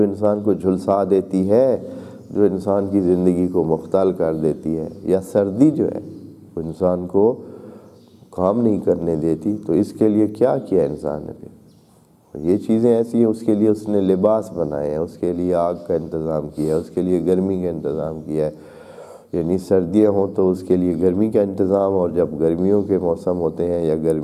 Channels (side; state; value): both; identical; correlation 1.00